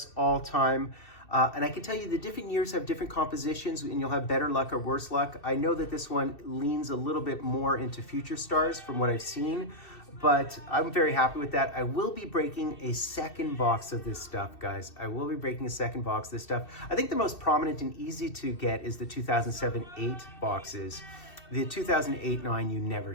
all time. And I can tell you the different years have different compositions and you'll have better luck or worse luck. I know that this one leans a little bit more into Future Stars from what I've seen, but I'm very happy with that. I will be breaking a second box of this stuff, guys. I will be breaking a second box of this stuff. I think the most prominent and easy to get is the 2007-8 boxes. The 2008-9 you never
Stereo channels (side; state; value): right; late; 2.7 ms